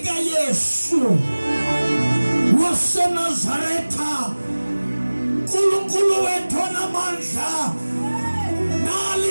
Yesu waseNazaretha, Nkulunkulu wethu onamandla, nali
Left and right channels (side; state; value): both; inverted; correlation -1.00